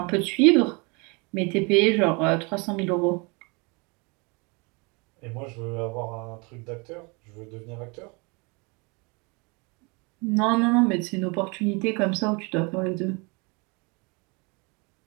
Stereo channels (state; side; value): quieter; left; 29.9 dB